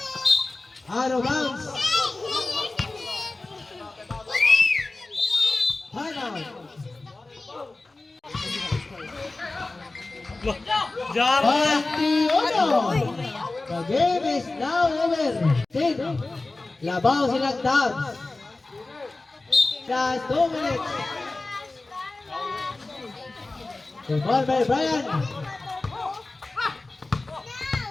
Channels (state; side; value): quieter; right; 3.2 dB